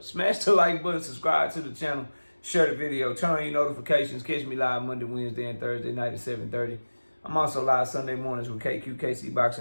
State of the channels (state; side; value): inverted; both; correlation -1.00